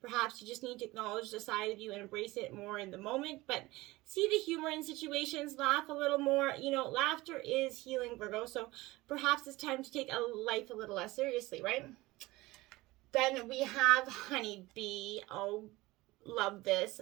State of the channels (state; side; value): quieter; left; 20.0 dB